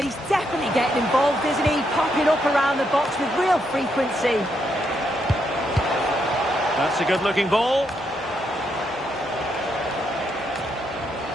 he's definitely getting involved, isn't he? Popping up around the box with real frequency. That's a good-looking ball.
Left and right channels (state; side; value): normal; both; correlation 0.78